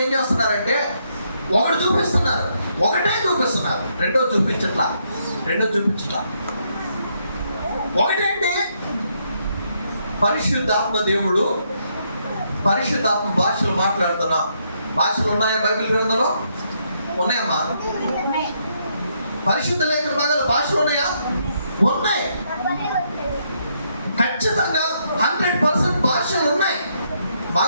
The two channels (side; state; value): both; inverted; correlation -0.75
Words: ఏం చేస్తున్నారంటే ఒకటే చూపిస్తున్నారు, రెండో చూపించట్లా. ఒకటేంటి? పరిశుద్ధాత్మ దేవుడు, పరిశుద్ధాత్మ భాషలు మాట్లాడుతున్నా. భాషలు ఉన్నాయా బైబిల్ గ్రంథంలో? ఉన్నాయమ్మా. పరిశుద్ధ లేఖన భాగాల భాషలు ఉన్నాయా? ఉన్నాయి. ఖచ్చితంగా 100% భాషలు ఉన్నాయి,